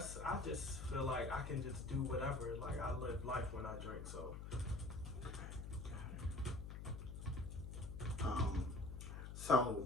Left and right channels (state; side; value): noise; left; hum, 7 dB below the sound